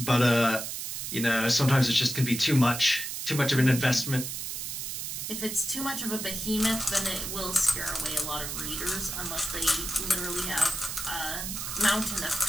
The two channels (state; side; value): noise; right; hiss, 5 dB below the sound